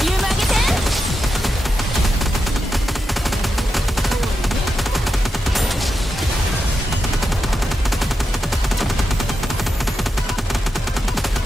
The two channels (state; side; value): normal; both; correlation 0.88